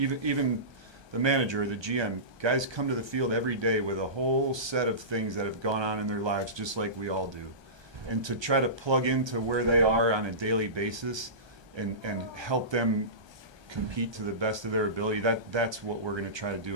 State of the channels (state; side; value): late; left; 1.2 ms